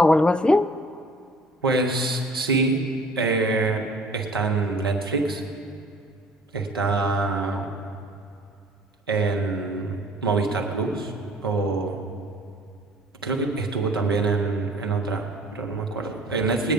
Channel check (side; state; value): both; normal; correlation 0.52